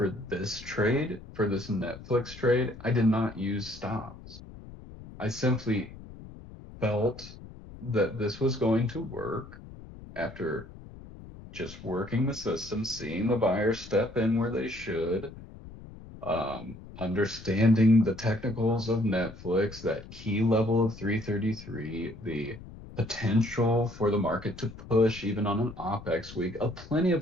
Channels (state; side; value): noise; left; rumble, 16 dB below the sound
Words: this trade, for this Netflix trade, I did not use stops. I simply felt that this was going to work after just working the system, seeing the buyers step in where they should, understanding the technicals of Netflix, that key level of 333, the potential for the market to push even on an OPEX week. Plenty